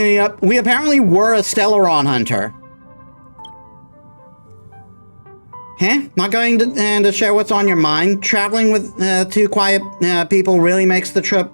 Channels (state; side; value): inverted; both; correlation -1.00